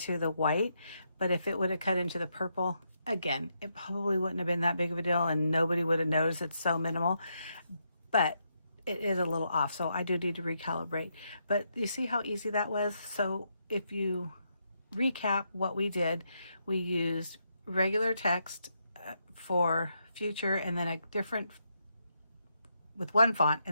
the white. But if it would have cut into the purple, again, it probably wouldn't have been that big of a deal and nobody would have noticed. It's so minimal. But it is a little off, so I do need to recalibrate. But you see how easy that was? So if you recap what we did, we used regular text for future, and then a different, with one font,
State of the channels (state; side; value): inverted; both; correlation -0.80